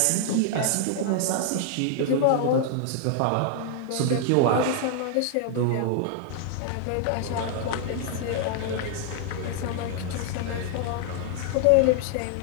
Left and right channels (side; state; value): both; different; correlation -0.01